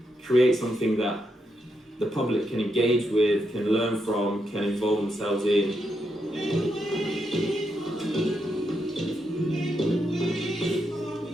create something that the public can engage with, can learn from, can involve themselves in?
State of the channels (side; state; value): both; normal; correlation 0.82